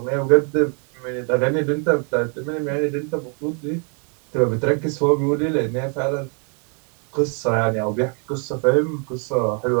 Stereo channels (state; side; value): quieter; left; 38.5 dB